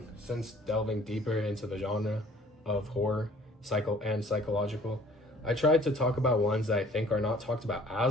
since delving deeper into the genre of horror, psychological. I tried to talk about ones that I think are not talked about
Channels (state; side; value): normal; both; correlation 0.54